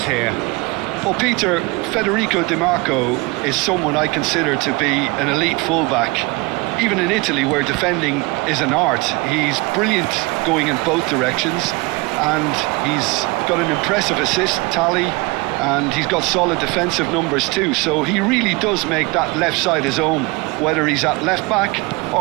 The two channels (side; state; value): left; quieter; 25.4 dB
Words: here? Well, Peter, Federico Di Marco is someone I consider to be an elite fullback. Even in Italy, where defending is an art, he's brilliant going in both directions, and he's got an impressive assist tally, and he's got solid defensive numbers too, so he really does make that left side his own, whether he's at left back